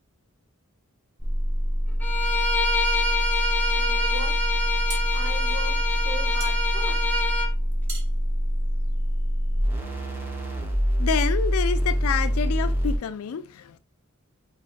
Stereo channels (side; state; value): both; normal; correlation 0.69